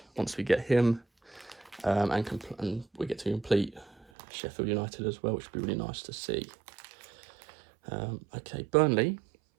once we get him, and we get to complete Sheffield United as well, which would be really nice to see. Okay, Burnley,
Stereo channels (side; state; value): left; drops out; at 4.0 s